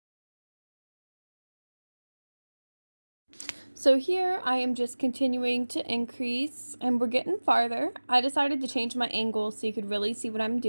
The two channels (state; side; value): inverted; both; correlation -1.00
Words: So here I am just continuing to increase, and we're getting farther. I decided to change my angle so you could really see what I'm